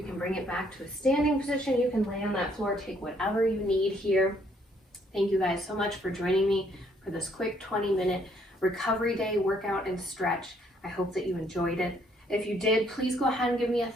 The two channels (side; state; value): both; normal; correlation 0.67